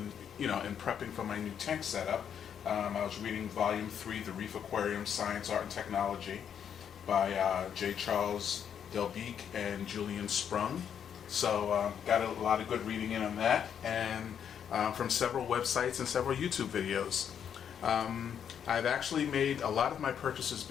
for my new tank setup. I was reading Volume 3, The Reef Aquarium, Science, Art, and Technology by J. Charles Delbeek and Julian Sprung. So got a lot of good reading in on that, and from several websites and several YouTube videos. I've actually made a lot of my purchases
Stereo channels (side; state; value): right; quieter; 8.4 dB